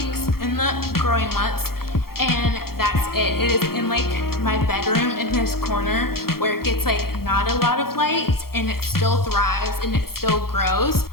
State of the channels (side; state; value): right; late; 0.94 ms